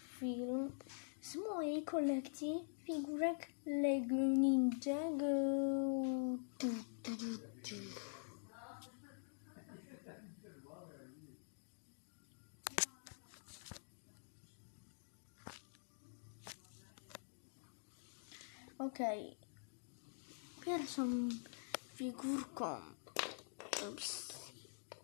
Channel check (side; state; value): right; silent; digital silence